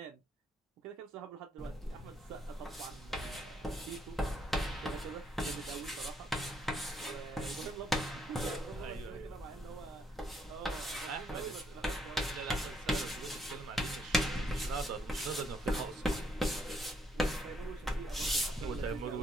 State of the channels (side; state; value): both; normal; correlation 0.71